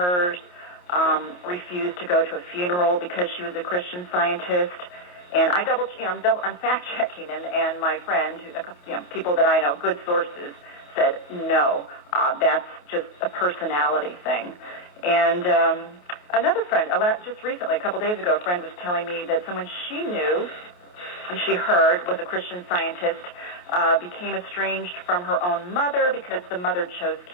refused to go to a funeral because she was a Christian Scientist. And I'm fact checking, and my friend, people that I know, good sources, said no, that's just a personality thing. And another friend, just recently, a couple days ago, a friend was telling me that someone she knew and she heard was a Christian Scientist became estranged from her own mother because the mother chose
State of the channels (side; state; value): right; late; 28 ms